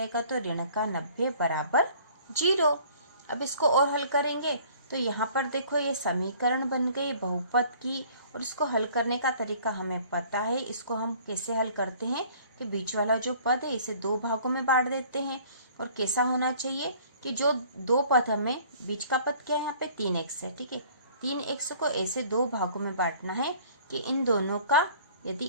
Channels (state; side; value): inverted; both; correlation -0.53